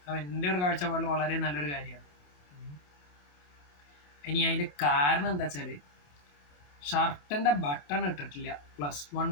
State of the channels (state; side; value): late; right; 28 ms